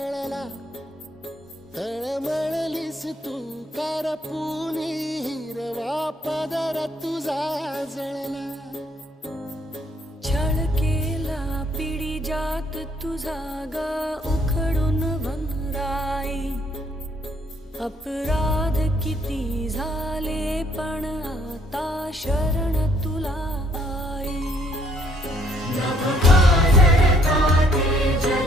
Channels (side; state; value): both; normal; correlation 0.65